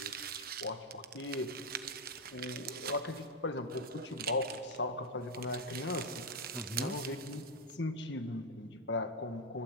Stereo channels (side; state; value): both; normal; correlation 0.04